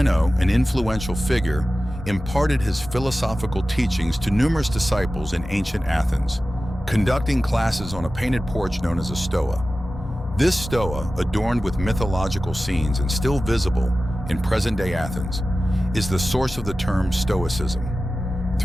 an influential figure, imparted his philosophical teachings to numerous disciples in ancient Athens, conducting classes on a painted porch known as a stoa. This stoa, adorned with mythological scenes and still visible in present-day Athens, is the source of the term Stoicism.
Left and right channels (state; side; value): normal; both; correlation 0.95